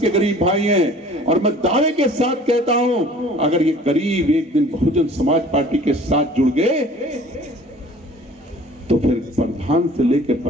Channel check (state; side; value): normal; both; correlation 0.49